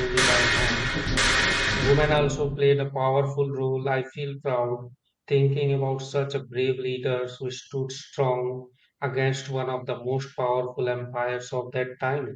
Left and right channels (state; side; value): identical; both; correlation 1.00